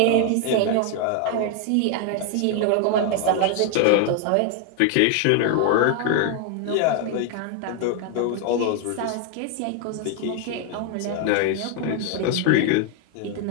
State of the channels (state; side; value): different; both; correlation 0.00